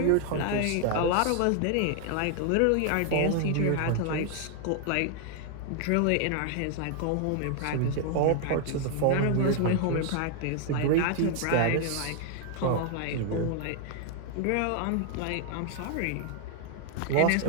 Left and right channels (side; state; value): both; different; correlation 0.00